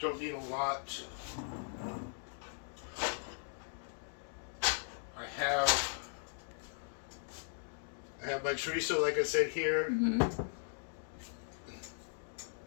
need a lot. I have my chorizo, like I said, here.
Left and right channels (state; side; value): silent; right; digital silence